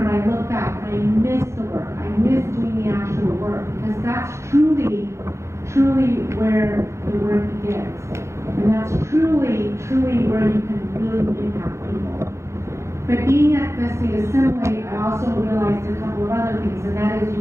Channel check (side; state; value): left; late; 0.14 ms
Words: I look back and I miss the work. I miss doing the actual work because that's truly where the work begins. And that's truly where you can really impact people. But being at the state assembly, I also realized a couple of other things, and that is